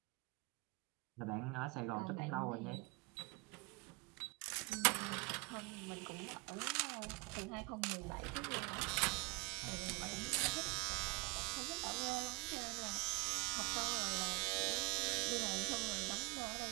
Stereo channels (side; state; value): left; quieter; 26.4 dB